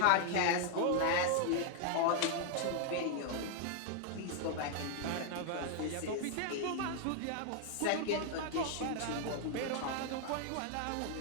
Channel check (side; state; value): both; different; correlation 0.00